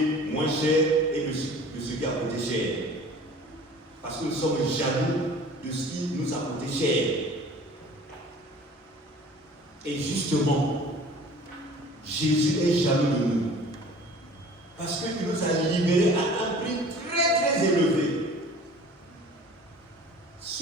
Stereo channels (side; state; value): both; normal; correlation 0.46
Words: moins cher et de ce qui a coûté cher. Parce que nous sommes jaloux de ce qui nous a coûté cher. Et justement, Jésus est jaloux de nous. Parce qu'il nous a libérés à un prix très très élevé.